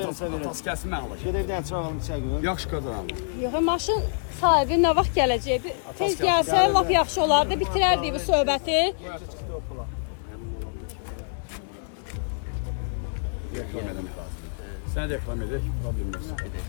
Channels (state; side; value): silent; right; digital silence